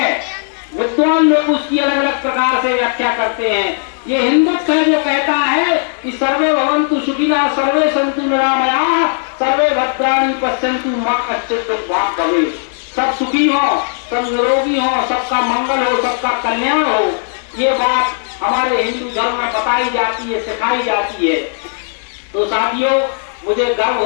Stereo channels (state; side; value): silent; right; digital silence